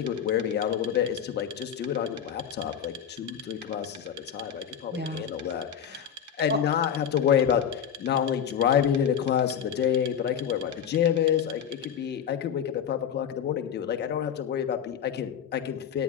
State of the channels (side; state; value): right; quieter; 8.4 dB